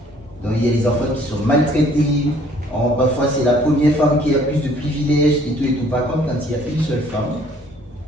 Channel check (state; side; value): normal; both; correlation 0.59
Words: Donc il y a les enfants qui sont maltraités, parfois c'est la première femme qui a plus de privilèges et tout et tout. Par contre, quand il y a une seule femme,